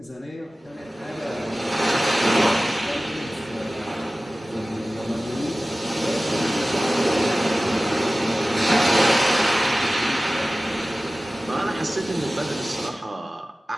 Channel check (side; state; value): both; normal; correlation 0.97